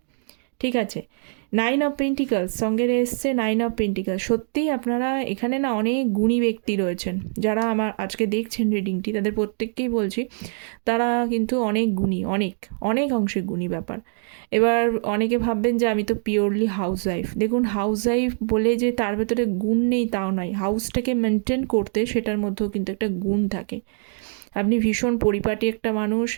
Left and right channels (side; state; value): left; silent; digital silence